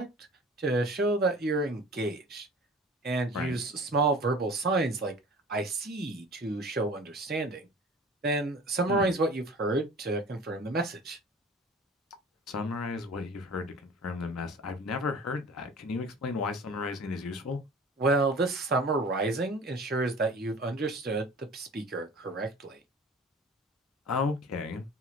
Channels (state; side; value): normal; both; correlation 0.43